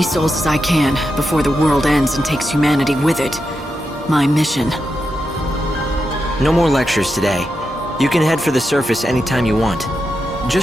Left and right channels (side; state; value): both; normal; correlation 0.87